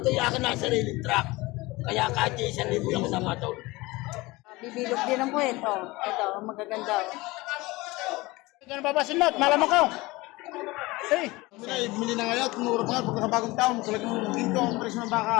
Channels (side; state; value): right; quieter; 21.6 dB